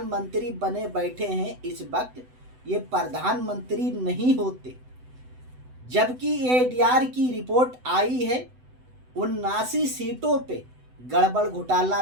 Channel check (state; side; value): late; left; 7.9 ms